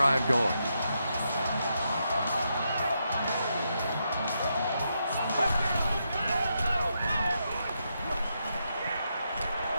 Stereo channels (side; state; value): both; inverted; correlation -0.82